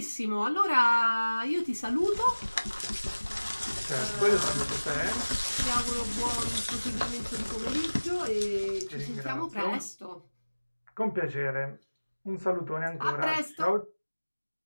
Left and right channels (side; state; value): both; inverted; correlation -1.00